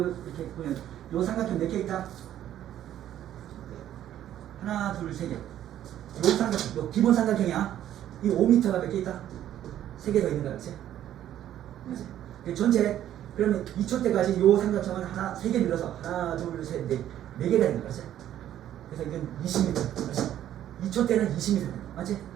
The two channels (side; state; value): left; quieter; 11.6 dB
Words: 이렇게 보면 요 삼각형 몇 개 있다? 하나, 둘, 세 개. 요 삼각형, 요 기본 삼각형이야. 이 5m가 몇 개 있다? 3개 더 있는 거야, 그렇지? 그렇지? 전체 그러면 2초 때까지 요 삼각형은 하나, 3개 늘어서 하나, 둘, 셋, 넷, 4개가 있는 거지. 그래서 이건 20m. 그렇지? 2초 때는 20m. 맞지?